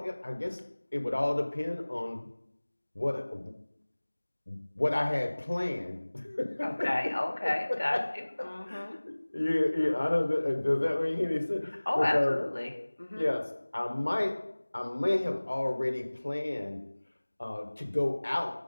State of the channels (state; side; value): inverted; both; correlation -1.00